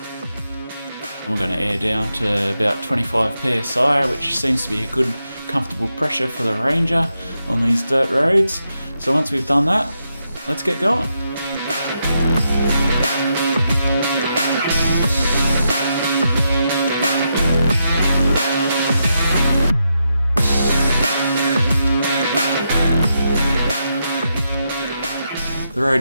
And we're going to air down to about 25 psi, which seems to be a good, comfortable pressure for the Ranger on these dirt roads. So once we've done that, let's get going. The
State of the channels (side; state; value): both; inverted; correlation -0.83